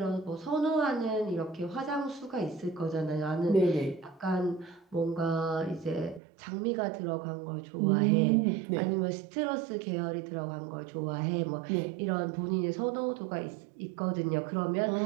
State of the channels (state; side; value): drops out; left; at 6.2 s